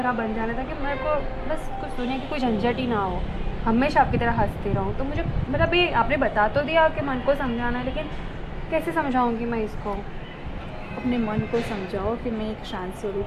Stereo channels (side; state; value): both; identical; correlation 1.00